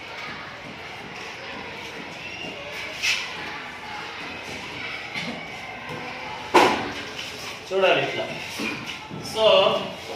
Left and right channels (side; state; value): both; identical; correlation 1.00